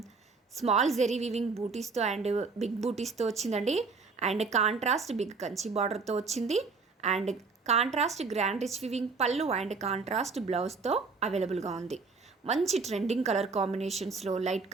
స్మాల్ జెరీ వీవింగ్ బూటీస్తో అండ్ బిగ్ బూటీస్తో వచ్చిందండి. అండ్ కాంట్రాస్ట్ బిగ్ కంచి బార్డర్తో వచ్చింది. And contrast grand rich weaving పళ్ళు అండ్ కాంట్రాస్ట్ బ్లౌజ్తో అవైలబుల్గా ఉంది. మంచి ట్రెండింగ్ కలర్ కాంబినేషన్స్లో, లైట్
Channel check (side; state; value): left; quieter; 4.5 dB